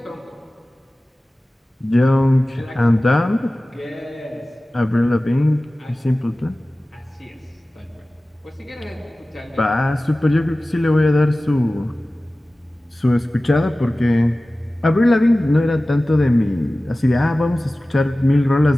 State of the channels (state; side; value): normal; both; correlation 0.97